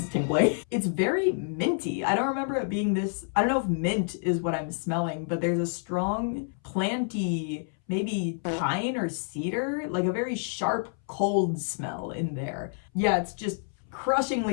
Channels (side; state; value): right; silent; 59 dB below the other